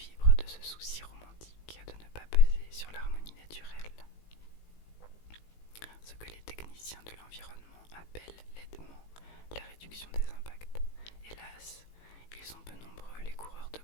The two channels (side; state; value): right; late; 18 ms